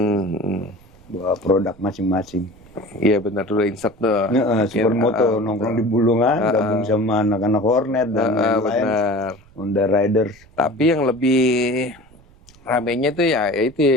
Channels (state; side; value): noise; right; rumble, 26 dB below the sound